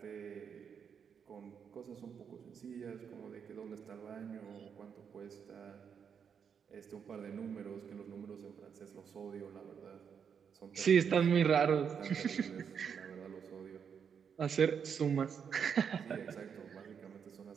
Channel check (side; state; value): left; quieter; 7.1 dB